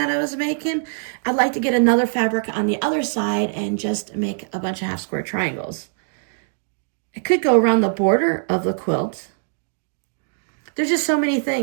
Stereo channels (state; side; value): silent; left; digital silence